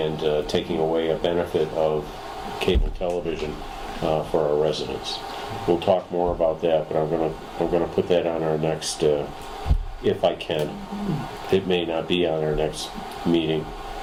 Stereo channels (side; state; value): both; identical; correlation 1.00